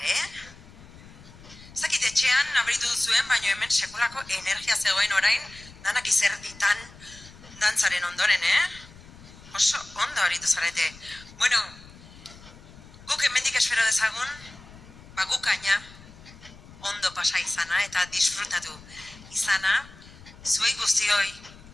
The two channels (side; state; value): left; noise; rumble, 20 dB below the sound